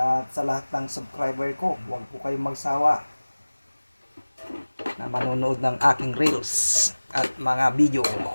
sa lahat ng subscriber ko. Huwag po kayong magsawa na manonood ng aking reels at mga video.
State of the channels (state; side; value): inverted; both; correlation -1.00